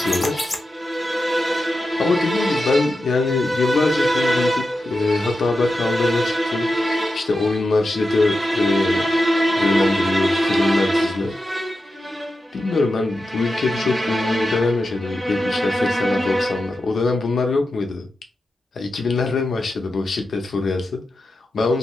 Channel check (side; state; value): both; normal; correlation 0.90